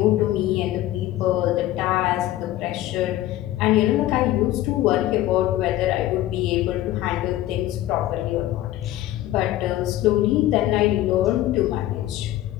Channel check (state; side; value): quieter; right; 14.5 dB